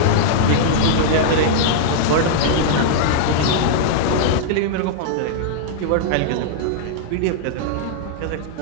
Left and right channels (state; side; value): different; both; correlation -0.01